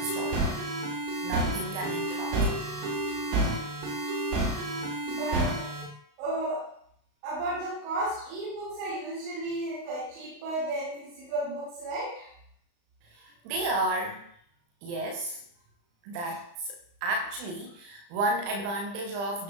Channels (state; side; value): late; left; 35 ms